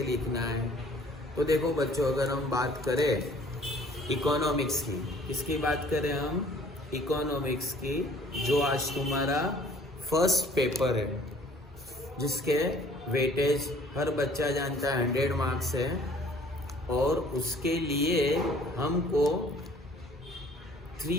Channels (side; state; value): both; normal; correlation 0.55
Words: लिखना है। तो देखो बच्चों, अगर हम बात करें इकोनॉमिक्स की, किसकी बात करें हम? इकोनॉमिक्स की, जो आज तुम्हारा फर्स्ट पेपर है, जिसके वेटेज हर बच्चा जानता है 100 मार्क्स है और उसके लिए हमको